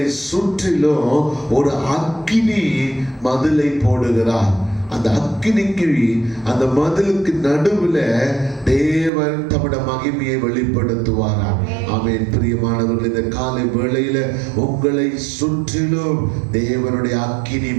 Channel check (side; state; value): left; drops out; at 9.1 s